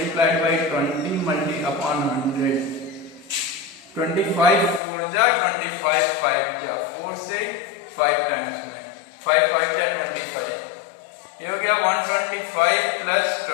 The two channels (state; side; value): drops out; right; at 4.8 s